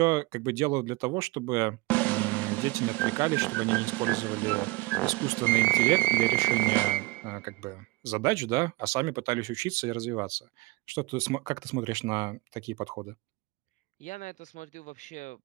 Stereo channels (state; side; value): quieter; left; 23.1 dB